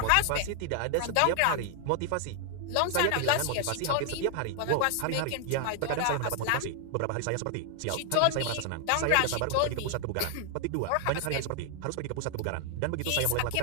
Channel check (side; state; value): both; different; correlation 0.00